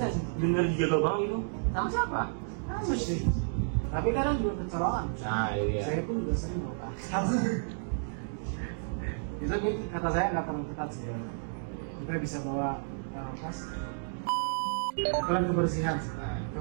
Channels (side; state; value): left; silent; digital silence